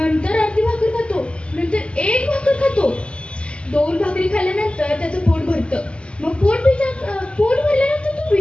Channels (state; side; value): late; right; 0.056 ms